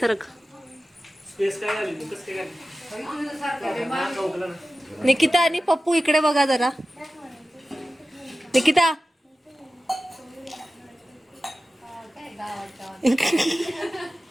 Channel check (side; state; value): both; normal; correlation 0.95